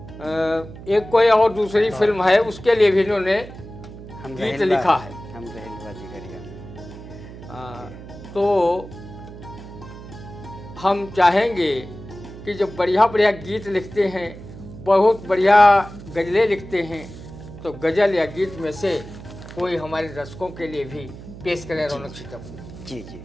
एक कोई और दूसरी फिल्म है उसके लिए भी इन्होंने गीत लिखा है। तो हम चाहेंगे कि जब बढ़िया बढ़िया गीत लिखते हैं, बहुत बढ़िया गज़लें लिखते हैं, तो गज़ल या गीत में से कोई हमारे दर्शकों के लिए भी पेश करें रौनक सीतापुरी। जी जी।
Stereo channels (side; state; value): right; noise; hum, 15 dB below the sound